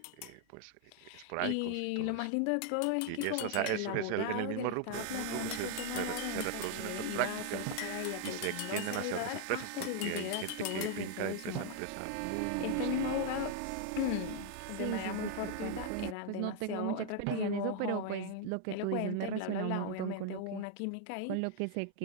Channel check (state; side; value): different; both; correlation 0.00